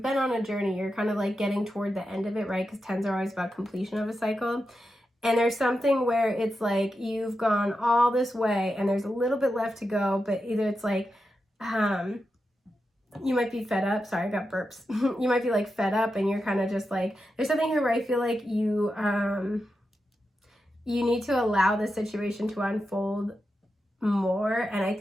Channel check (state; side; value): normal; both; correlation 0.89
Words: been on a journey, you're kind of like getting toward the end of it, right? Because 10s are always about completion of a cycle. And there's something where it's like you've gone all this way and there's a little bit left to go, but either it's like, you might be fed up. Sorry, I got burps. You might be like fed up and you're kind of just like, there's something here where I feel like you need to allow the situation to unfold more. And I